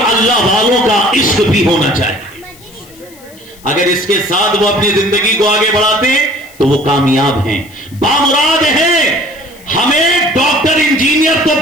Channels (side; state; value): left; noise; hiss, 24 dB below the sound